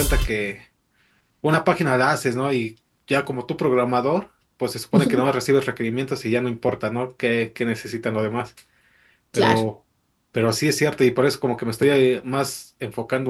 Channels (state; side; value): identical; both; correlation 1.00